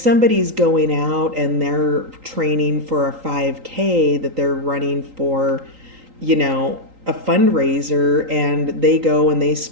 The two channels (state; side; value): late; left; 3.8 ms